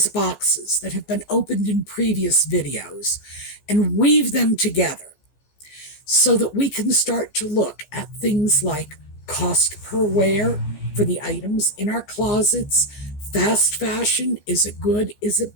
boxes that have been opened in previous videos, and weave them together so that we can start to look at things like cost per wear for the items in our closets. Fast fashion, is it good? Is it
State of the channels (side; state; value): right; late; 14 ms